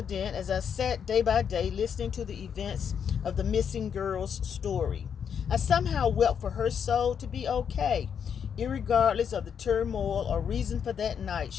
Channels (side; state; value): right; quieter; 7.6 dB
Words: as I sat day by day listening to the events of the missing girl's story. I somehow wept for her soul to be okay, irregardless of the turmoil or reason for that night